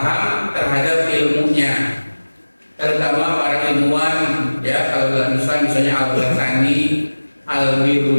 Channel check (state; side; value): inverted; both; correlation -1.00